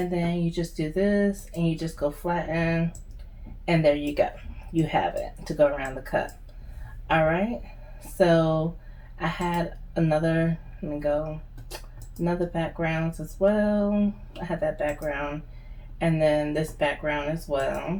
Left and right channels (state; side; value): identical; both; correlation 1.00